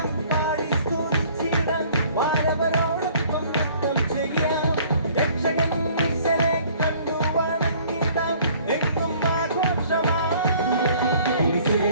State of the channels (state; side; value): inverted; both; correlation -0.55